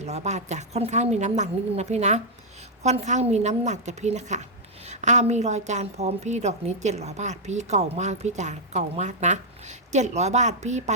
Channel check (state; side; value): normal; both; correlation -0.04